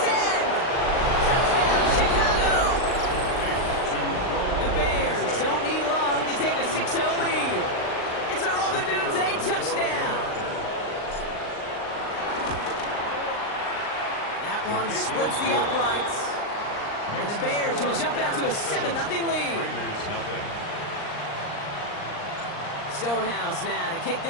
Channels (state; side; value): late; right; 39 ms